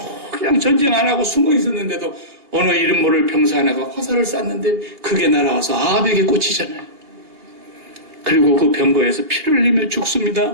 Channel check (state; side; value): late; left; 2.9 ms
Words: 그냥 전쟁 안 하고 숨어 있었는데도 어느 이름 모를 병사 하나가 화살을 쐈는데 그게 날아와서 아합에게 꽂히잖아요. 그리고 그 병거에서 피를 흘리며